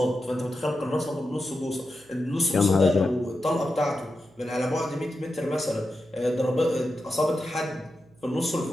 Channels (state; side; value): noise; right; hum, 29 dB below the sound